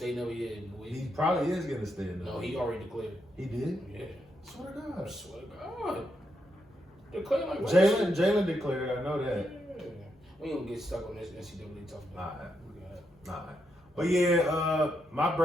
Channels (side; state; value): both; normal; correlation 0.81